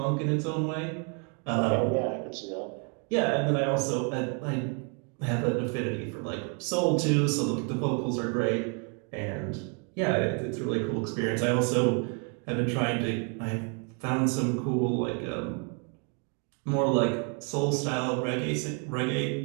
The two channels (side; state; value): left; quieter; 38.1 dB